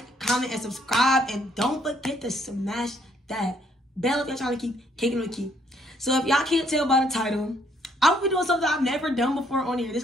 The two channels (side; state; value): both; normal; correlation 0.68